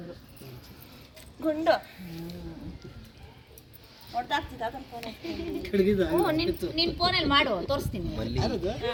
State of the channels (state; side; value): identical; both; correlation 1.00